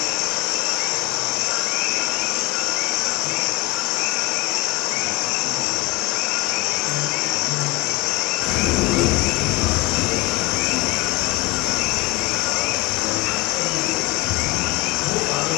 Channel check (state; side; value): quieter; right; 22.5 dB